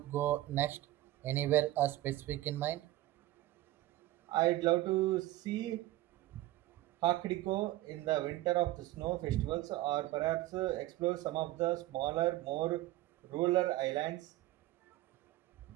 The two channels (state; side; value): quieter; left; 16.3 dB